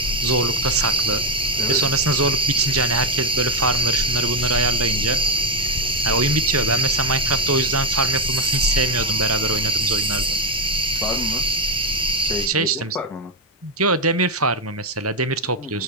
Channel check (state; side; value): normal; both; correlation 0.07